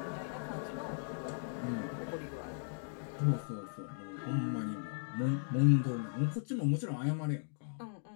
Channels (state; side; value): silent; right; digital silence